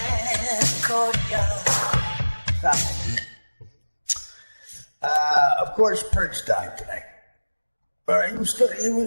it. Of course, Prince died today.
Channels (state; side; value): inverted; both; correlation -1.00